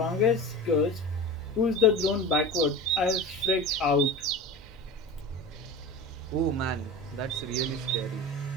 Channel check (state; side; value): normal; both; correlation 0.31